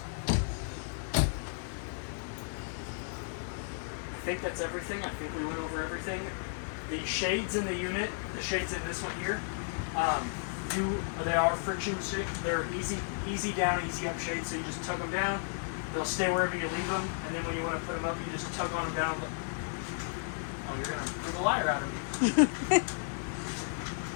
I think that's everything. I think we went over everything. The shades in the unit, the shades in this one here, they are friction shades. They're easy down, easy up shades. So you just tug them down. They'll stay wherever you leave them. And then when you want to put them up, you just tug on them down. Oh, you're gonna prove a liar out of me.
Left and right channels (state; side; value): silent; right; digital silence